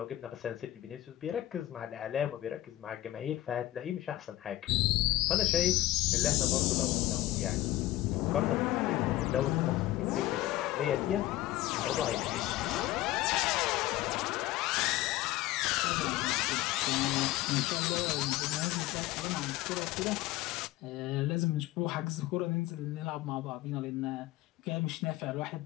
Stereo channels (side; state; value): right; quieter; 15.9 dB